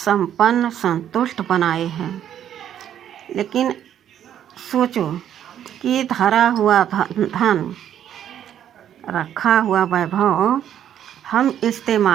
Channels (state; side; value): quieter; left; 10.2 dB